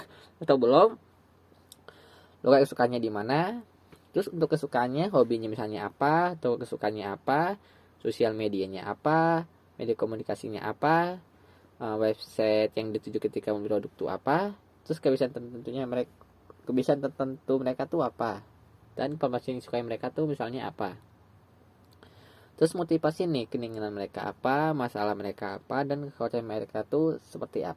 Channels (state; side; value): identical; both; correlation 1.00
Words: atau belum, lokasi kesukaannya di mana, terus untuk kesukaannya, hobinya misalnya apa, atau kesukaannya apa, sosial medianya apa, media komunikasinya apa, website yang dituju ketika membeli produk itu apa, terus kebiasaan tertentu mereka tuh apa, dan informasi yang disukai mereka tuh misalnya apa. Terus motivasi nih, keinginan mereka apa, masalah mereka apa, dan kekhawatiran mereka tuh seperti